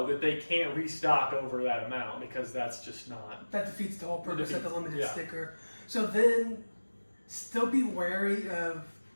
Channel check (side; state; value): both; inverted; correlation -1.00